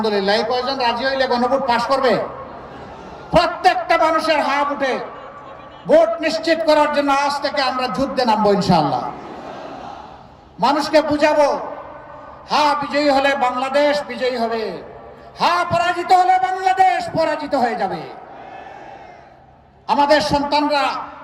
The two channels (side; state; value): both; identical; correlation 1.00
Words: এই কয়জন রাজি হইলে গণভোট পাশ করবে? প্রত্যেকটা মানুষের হা ভোটে ভোট নিশ্চিত করার জন্য আজ থেকে আমরা যুদ্ধে নামবো ইনশাআল্লাহ। মানুষকে বুঝাবো, হা বিজয়ী হলে বাংলাদেশ বিজয়ী হবে, হা পরাজিত হলে বাংলাদেশ পরাজিত হয়ে যাবে। আমাদের সন্তানরা